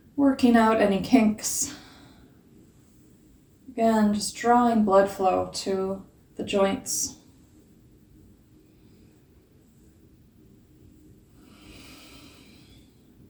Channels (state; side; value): identical; both; correlation 1.00